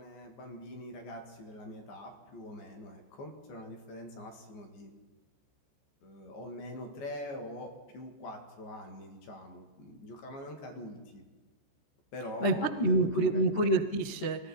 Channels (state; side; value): late; right; 14 ms